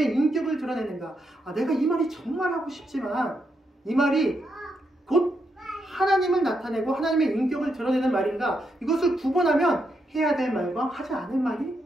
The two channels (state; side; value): normal; both; correlation 0.81